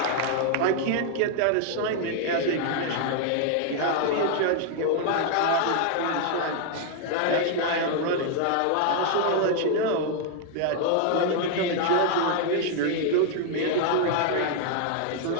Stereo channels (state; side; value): different; both; correlation 0.00